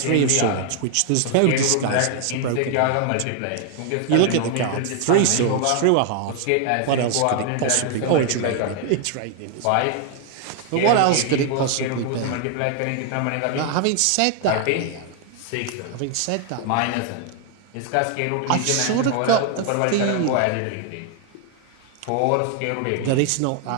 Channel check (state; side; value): different; both; correlation 0.00